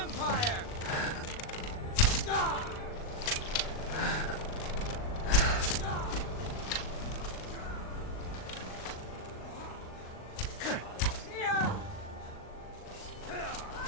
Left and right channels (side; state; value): right; late; 39 ms